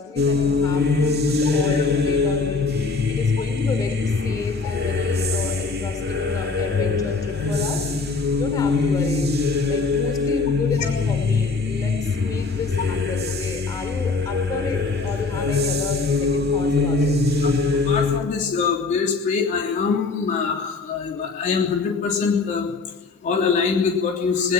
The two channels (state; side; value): quieter; right; 4.0 dB